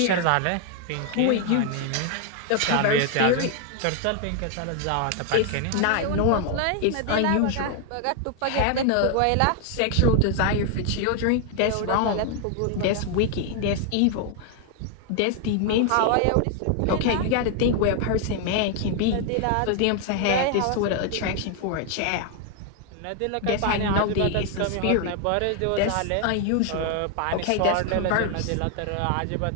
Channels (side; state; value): both; different; correlation 0.00